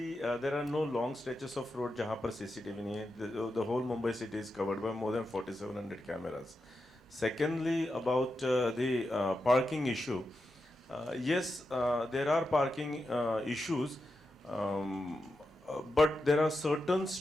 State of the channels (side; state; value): both; normal; correlation 0.88